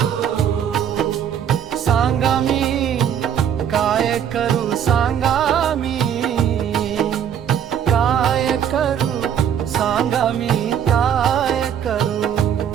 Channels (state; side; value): quieter; left; 8.9 dB